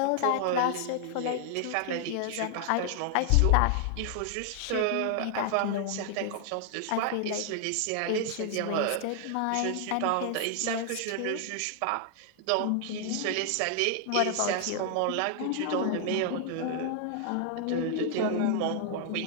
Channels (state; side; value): different; both; correlation 0.00